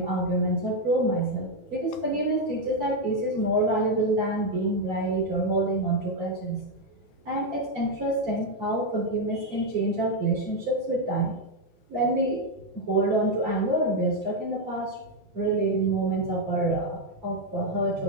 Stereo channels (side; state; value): both; normal; correlation 0.03